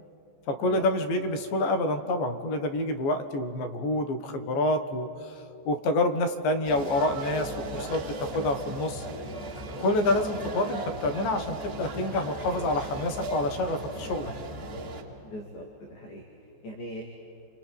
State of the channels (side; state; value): right; late; 14 ms